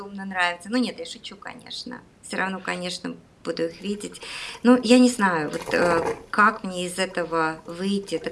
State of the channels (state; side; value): identical; both; correlation 1.00